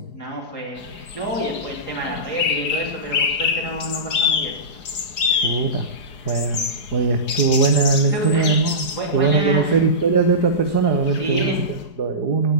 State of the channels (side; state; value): right; late; 4.8 ms